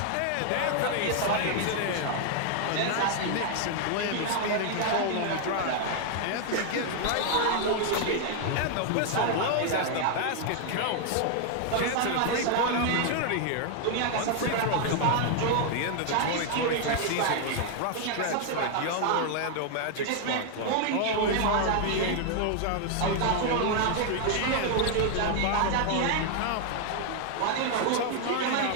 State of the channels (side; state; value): both; different; correlation 0.00